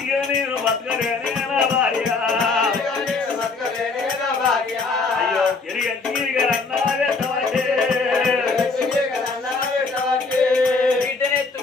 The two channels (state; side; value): quieter; right; 4.1 dB